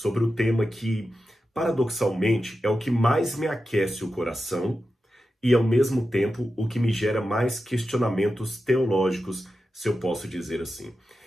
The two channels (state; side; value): normal; both; correlation 0.91